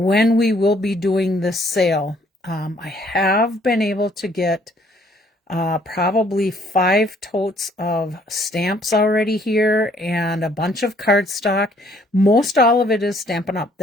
we will be doing this sale. I have been able to get probably 5 totes of stamps already here and a bunch of cardstock. Most all of it is Stampin' Up.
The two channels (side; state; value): both; normal; correlation 0.63